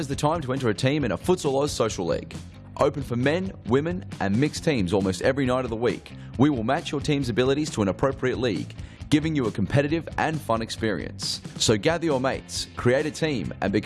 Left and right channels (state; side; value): identical; both; correlation 1.00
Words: the time to enter a team in a Futsal Oz Social League. Open for men, women and mixed teams almost every night of the week. We will match your team's abilities to an appropriate league, giving you a competitive and fun experience. So gather your mates, create a team and